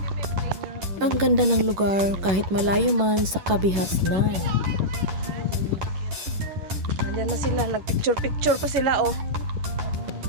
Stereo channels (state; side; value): late; left; 11 ms